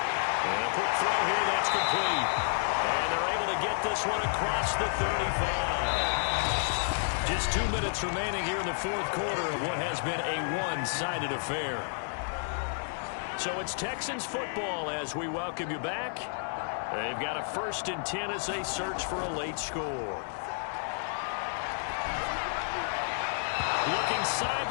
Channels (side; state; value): right; silent; digital silence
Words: a quick throw here, that's complete. And they're able to get this one across the 35. Just 2 minutes remaining here in the 4th quarter of what has been a one-sided affair. So it's Texans football as we welcome you back. They've got a 1st and 10 as they search for a late score. Looking